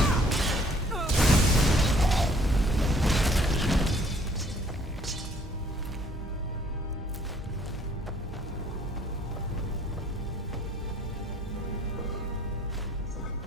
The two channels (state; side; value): normal; both; correlation 0.60